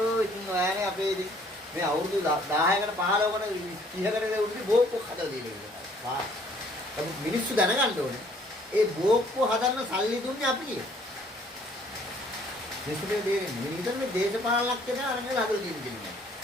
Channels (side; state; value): both; normal; correlation 0.60